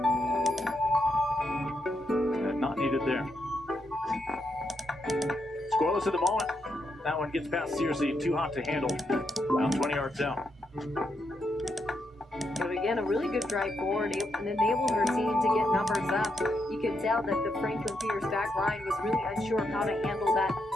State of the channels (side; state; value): both; normal; correlation 0.81